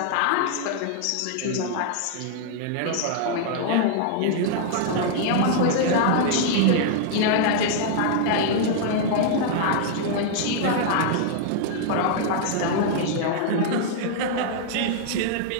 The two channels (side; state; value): both; different; correlation -0.01